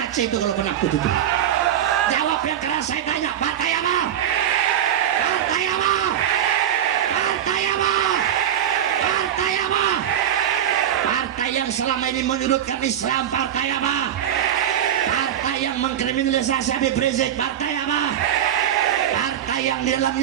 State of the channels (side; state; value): left; quieter; 10.3 dB